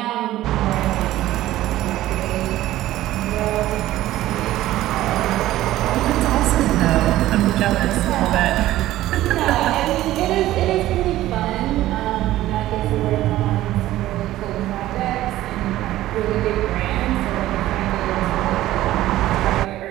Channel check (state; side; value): quieter; left; 15.0 dB